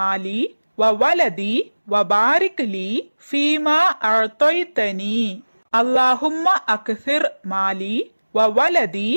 வ வலதி வ பாரிக் லீ ஃபீமா அஅதைதனி. அல்லாஹும்ம அக்ஸிர் மாலி வ வலதி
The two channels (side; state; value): both; inverted; correlation -1.00